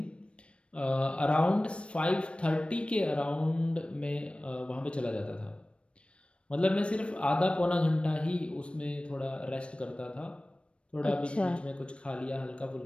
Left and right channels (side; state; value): right; late; 0.059 ms